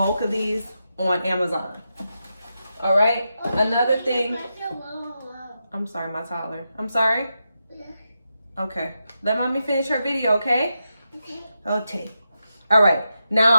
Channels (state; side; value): inverted; both; correlation -0.87